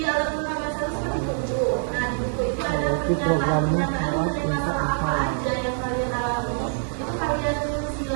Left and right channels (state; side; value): silent; left; 62 dB below the other